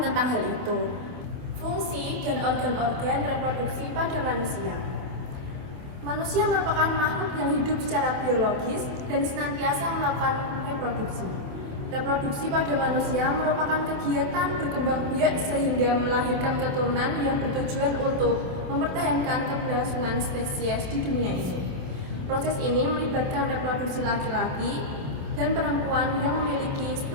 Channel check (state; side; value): late; left; 27 ms